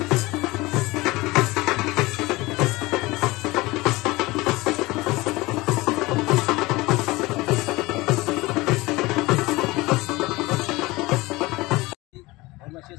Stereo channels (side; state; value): right; quieter; 21.2 dB